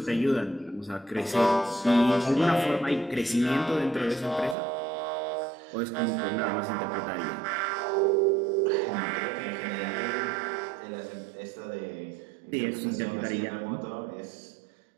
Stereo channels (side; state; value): left; drops out; at 4.5 s